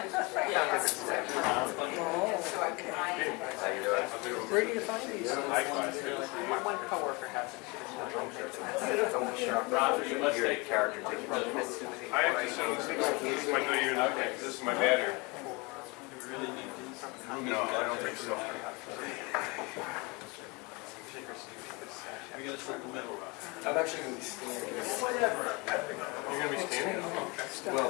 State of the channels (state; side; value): quieter; right; 26.8 dB